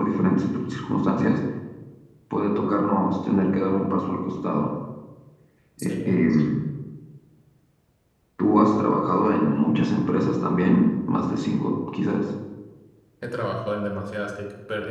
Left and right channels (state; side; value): identical; both; correlation 1.00